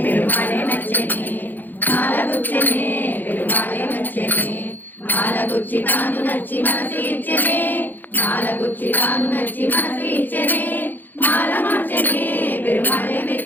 మాలగుచ్చి తాను నచ్చి మనసు ఇచ్చనే మాలగుచ్చి తాను నచ్చి మనసు ఇచ్చనే మాల మార్చనే పెరుమాళే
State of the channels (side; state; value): right; late; 0.087 ms